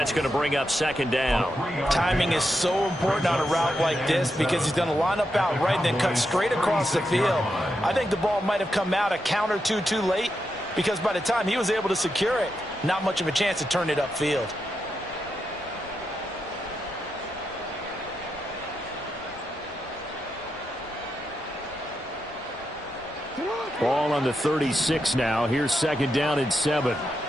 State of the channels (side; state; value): both; normal; correlation 0.85